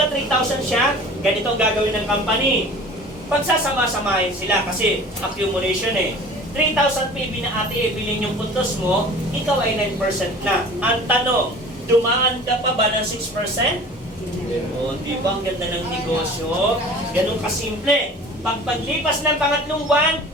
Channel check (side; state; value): both; normal; correlation 0.43